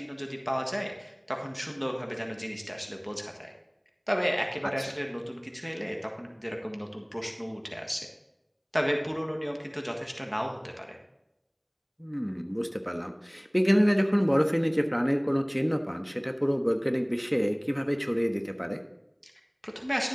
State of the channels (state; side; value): identical; both; correlation 1.00